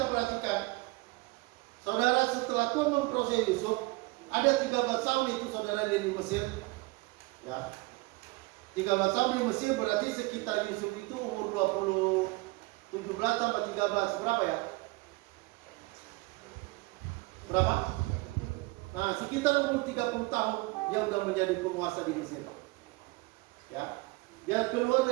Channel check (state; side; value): quieter; left; 24.3 dB